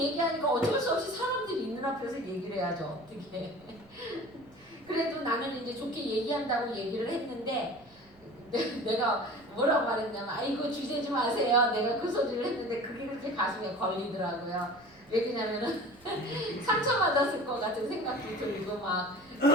어쩔 수 없이 사람들이 있는 앞에서 얘기를 해야죠. 어떻게 그래도 나는 이제 좋게 얘기한다고 얘기를 했는데 내가 뭐라고 말했냐면 아이고 주제지 마세요. 내가 그 소리를 했는데 그게 그렇게 가슴에 걸리더라고요. 왜 그러냐면은 상처받았을 것 같은 생각도 들고 막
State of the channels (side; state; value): right; noise; rumble, 27 dB below the sound